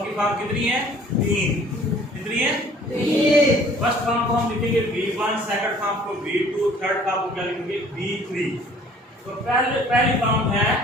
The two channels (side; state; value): both; normal; correlation 0.53